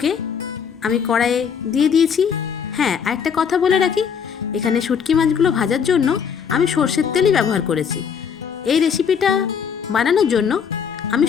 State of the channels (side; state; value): right; quieter; 7.0 dB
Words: আমি কড়াইয়ে দিয়ে দিয়েছি। হ্যাঁ, আরেকটা কথা বলে রাখি, এখানে শুটকি মাছগুলো ভাজার জন্য আমি সর্ষের তেলই ব্যবহার করেছি। এই রেসিপিটা বানানোর জন্য আমি